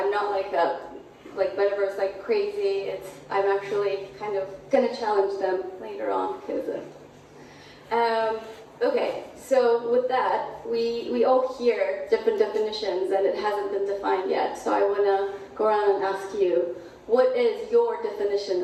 not like Metaverse like crazy. I'm actually kind of gonna challenge them later on because okay, so with that, we all hear different definitions and it hasn't been defined yet. So I want to go around and ask you, what is your definition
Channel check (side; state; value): both; identical; correlation 1.00